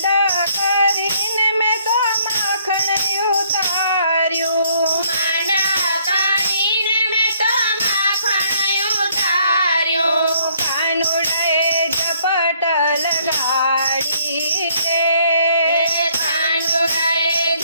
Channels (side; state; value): both; inverted; correlation -0.66